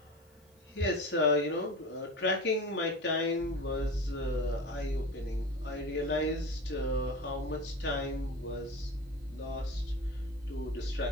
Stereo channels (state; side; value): normal; both; correlation 0.31